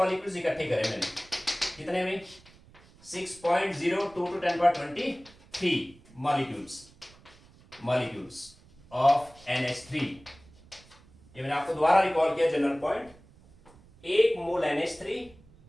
इकट्ठे करे मैंने, कितने में 6.02 to 1023 मॉलिक्यूल्स ऑफ NH3। ये मैंने आपको दोबारा रिकॉल किया general point, 1 mole NH3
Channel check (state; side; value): noise; right; rumble, 25 dB below the sound